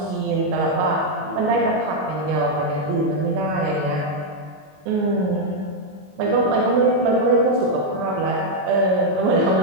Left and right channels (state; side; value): late; left; 21 ms